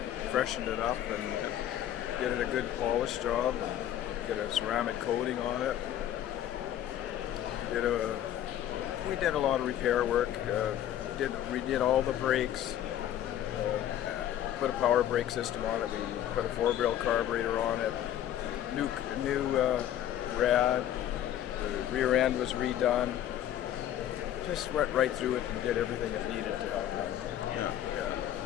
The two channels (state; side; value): quieter; right; 11.4 dB